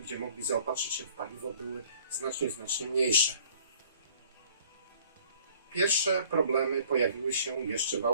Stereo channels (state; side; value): inverted; both; correlation -0.55